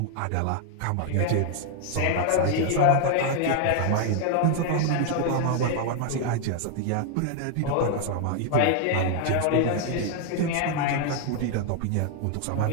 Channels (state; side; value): different; both; correlation 0.00